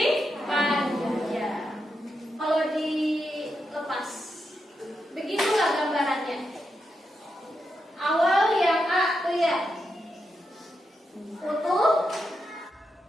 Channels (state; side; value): normal; both; correlation 0.85